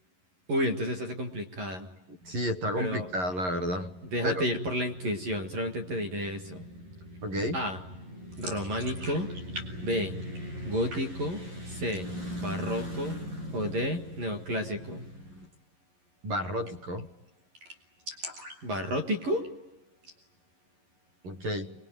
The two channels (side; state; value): left; late; 11 ms